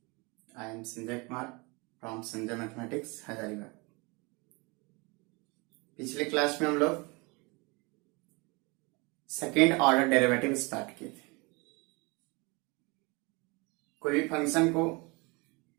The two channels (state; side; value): quieter; left; 27.8 dB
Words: I am Sanjay Kumar from Sanjay Mathematics, Hazaribagh. पिछले class में हम लोग second order derivative start किए थे। कोई भी फंक्शन को